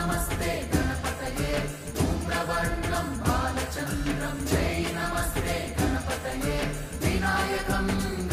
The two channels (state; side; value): identical; both; correlation 1.00